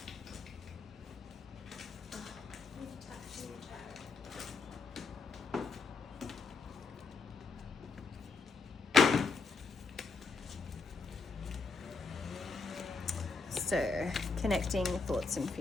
so, connecting thoughts and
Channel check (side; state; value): right; quieter; 4.4 dB